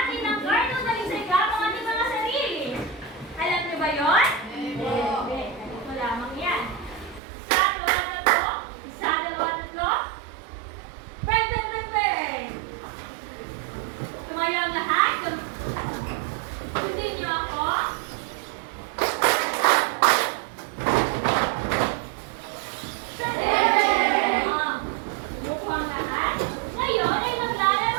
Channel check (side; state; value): left; drops out; at 7.2 s